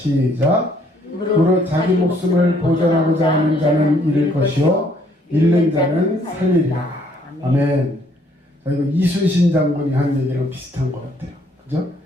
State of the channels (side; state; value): both; normal; correlation 0.65